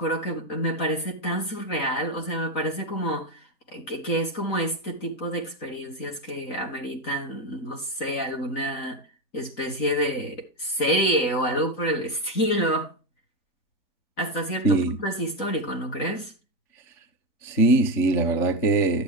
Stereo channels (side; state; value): right; late; 4.0 ms